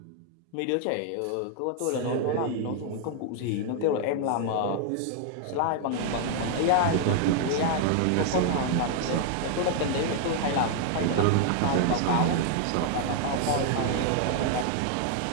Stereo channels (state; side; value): different; both; correlation 0.00